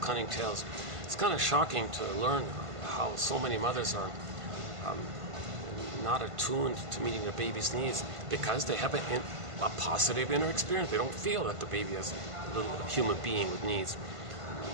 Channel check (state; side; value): late; left; 1.5 ms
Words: tales. It's kind of shocking to learn how so many mothers are not attuned to meeting their baby's needs because they have a positive inner experience. They don't feel that the baby is a little human being with needs.